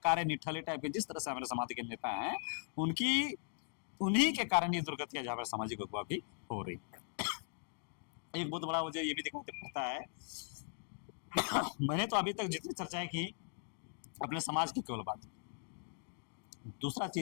निठल्ले टाइप के जिस तरह से हमारे समाज के नेता हैं, उन्हीं के कारण ये दुर्गतियां हमारे सामाजिक अगुवा की हो रही है। एक बहुत बड़ा वजह ये भी दिखाई पड़ता है, मैंने तो अभी तक जितनी चर्चाएं की अपने समाज की केवल बात, दूसरा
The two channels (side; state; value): right; silent; digital silence